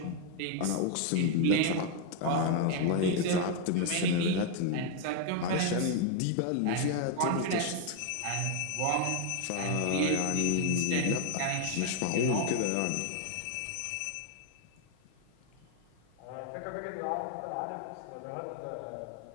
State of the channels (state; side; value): different; both; correlation 0.01